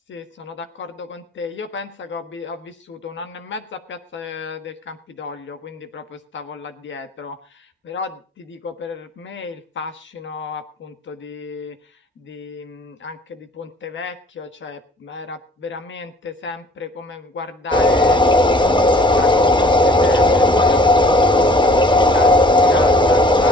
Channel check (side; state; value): both; normal; correlation 0.53